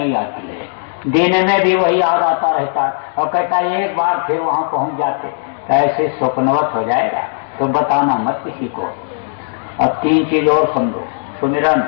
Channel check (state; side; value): silent; right; digital silence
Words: आती है, दिन में भी वही याद आता रहता है और कहता है एक बार फिर वहां पहुंच जाते, तो ऐसे स्वप्नवत हो जाएगा। तो बताना मत किसी को। अब 3 चीज और समझो, सुमिरन,